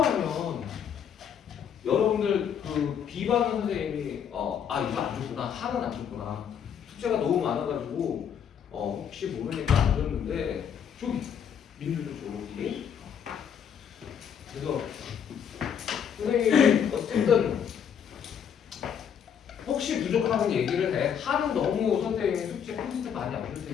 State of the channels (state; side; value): quieter; right; 8.1 dB